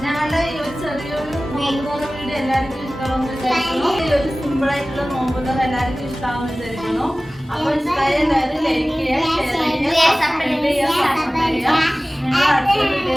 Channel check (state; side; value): normal; both; correlation 0.97